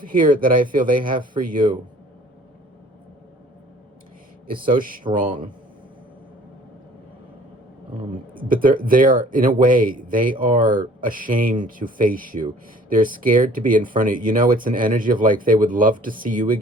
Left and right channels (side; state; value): both; normal; correlation 0.52